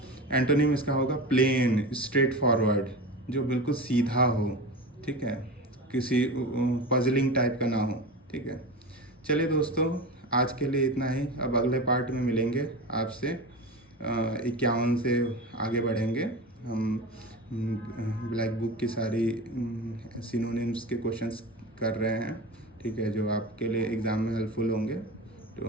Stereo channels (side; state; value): both; normal; correlation 0.27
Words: एंटोनिम इसका होगा प्लेन, स्ट्रेट फॉरवर्ड, जो बिल्कुल सीधा हो, ठीक है, किसी पजलिंग टाइप का ना हो, ठीक है। चलिए दोस्तों, आज के लिए इतना ही। अब अगले पार्ट में मिलेंगे आपसे, 51 से आगे बढ़ेंगे हम। ब्लैक बुक की सारी सिनोनिम्स के क्वेश्चंस कर रहे हैं, ठीक है, जो आपके लिए एग्ज़ाम में हेल्पफुल होंगे।